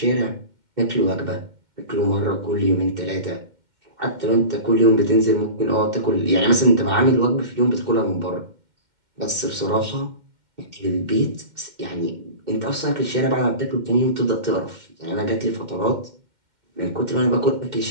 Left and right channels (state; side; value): late; left; 2.1 ms